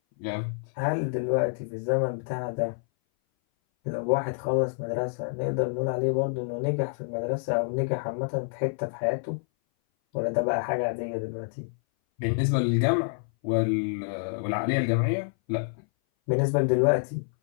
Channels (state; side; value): silent; right; 58 dB below the other